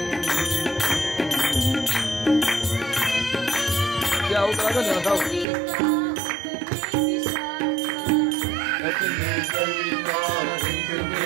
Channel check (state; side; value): drops out; left; at 5.5 s